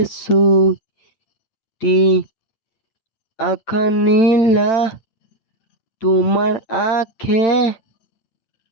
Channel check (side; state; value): right; late; 8.9 ms